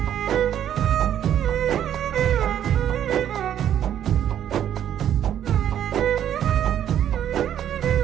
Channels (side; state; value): left; quieter; 10.3 dB